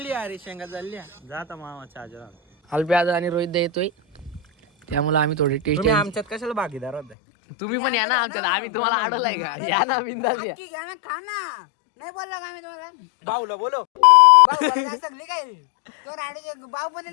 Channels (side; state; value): right; drops out; at 7.2 s